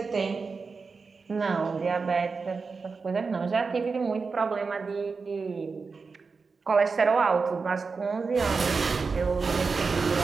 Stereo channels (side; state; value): left; quieter; 4.7 dB